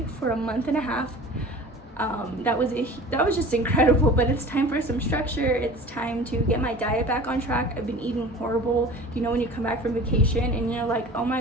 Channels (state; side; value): normal; both; correlation 0.40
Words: for a month and a half. That was just incredible, but it's time for some structure. It's time to get my diet back on track. I've been eating horrible. When you come back from vacation and you're like, oh